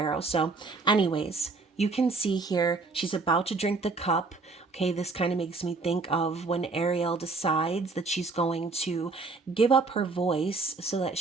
So anyways, you can see here, she's about to drink the cup. Okay, this kind of makes me think of when Ariel decides that she's going to give up her voice so that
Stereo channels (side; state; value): left; quieter; 3.9 dB